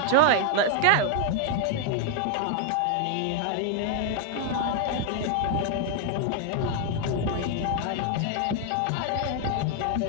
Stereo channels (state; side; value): different; both; correlation 0.00